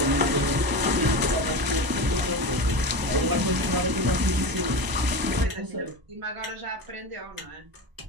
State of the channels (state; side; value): late; left; 1.0 ms